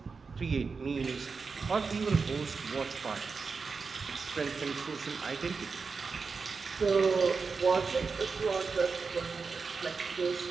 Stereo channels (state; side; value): quieter; left; 4.8 dB